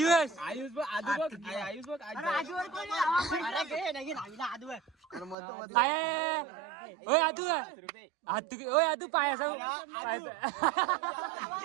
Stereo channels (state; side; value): drops out; left; at 5.4 s